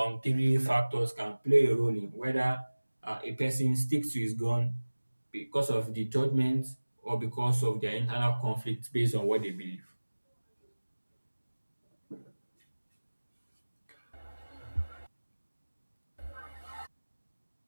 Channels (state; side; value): inverted; both; correlation -1.00